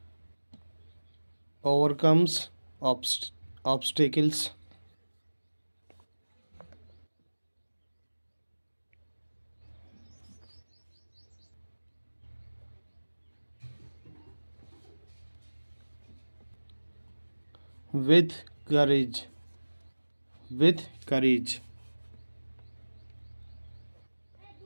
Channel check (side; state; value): both; inverted; correlation -1.00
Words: Overcomes obstacles. With courage. With courage.